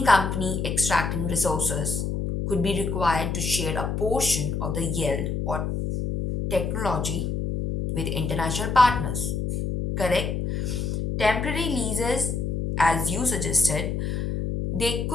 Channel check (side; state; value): left; noise; hum, 2 dB below the sound